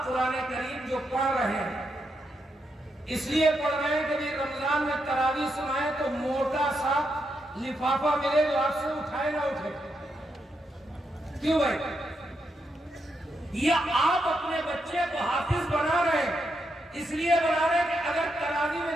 قرآن کریم جو پڑھ رہے ہیں، اس لیے پڑھ رہے ہیں کہ بھی رمضان میں تراویح سنائیں تو موٹا سا لفافہ ملے جو آپ سے اٹھائے نہ اٹھے۔ کیوں بھائی؟ یا آپ اپنے بچے کو حافظ بنا رہے ہیں، اس لیے بنا رہے ہیں کہ اگر تراویح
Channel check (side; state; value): both; normal; correlation 0.82